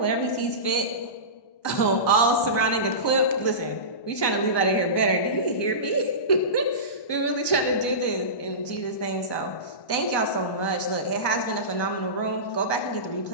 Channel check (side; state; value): right; late; 1.2 ms